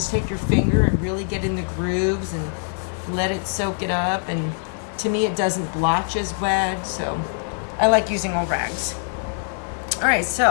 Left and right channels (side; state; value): right; silent; 57 dB below the other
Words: take your finger and really get in the grooves and let it soak it up, and to me it doesn't blotch as bad, so I like using old rags. Alright,